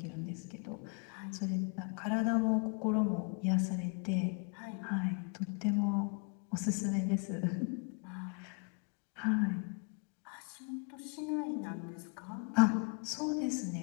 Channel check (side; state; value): right; quieter; 36.6 dB